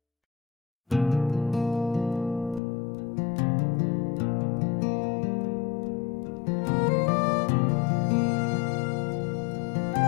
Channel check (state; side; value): drops out; right; at 2.6 s